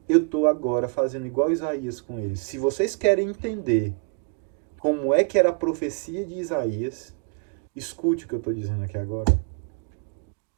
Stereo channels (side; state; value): left; quieter; 38.6 dB